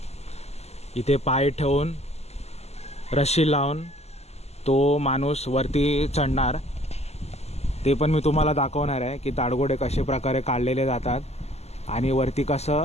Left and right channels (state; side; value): late; right; 0.31 ms